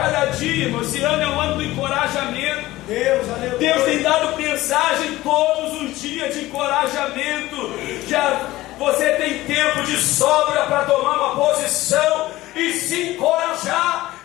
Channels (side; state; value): right; quieter; 17.3 dB